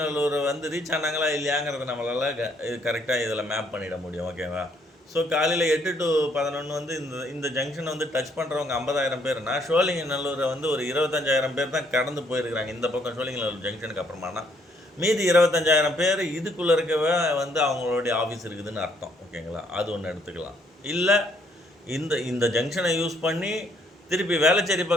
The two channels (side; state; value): both; normal; correlation 0.68